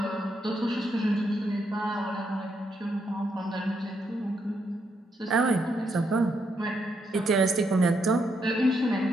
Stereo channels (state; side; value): normal; both; correlation 0.78